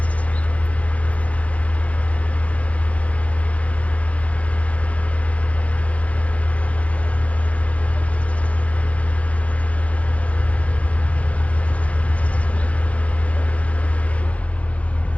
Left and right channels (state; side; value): late; right; 0.065 ms